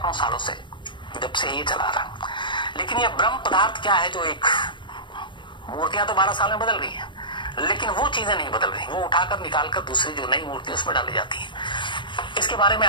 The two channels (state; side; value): late; right; 0.23 ms